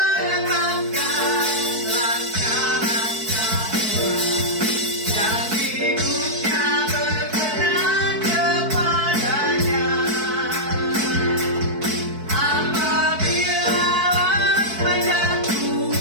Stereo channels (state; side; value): late; left; 4.6 ms